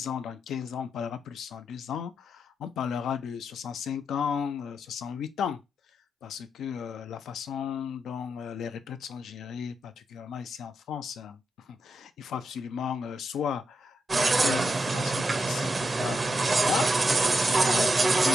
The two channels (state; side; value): normal; both; correlation 0.84